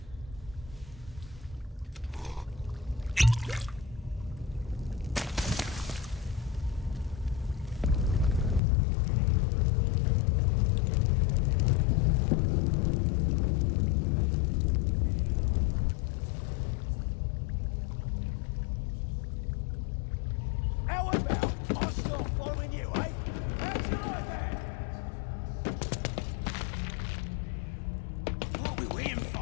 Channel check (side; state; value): right; drops out; at 8.6 s